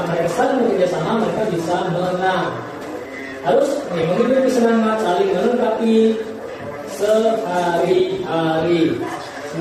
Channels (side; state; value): both; identical; correlation 1.00